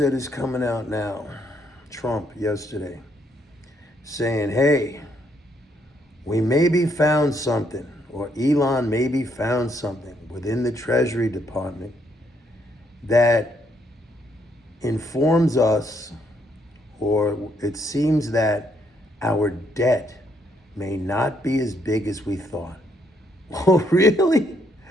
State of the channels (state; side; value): normal; both; correlation 0.72